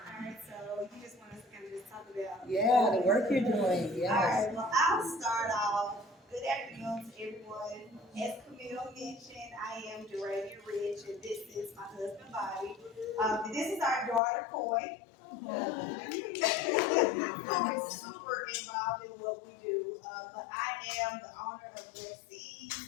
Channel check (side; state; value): right; drops out; at 14.2 s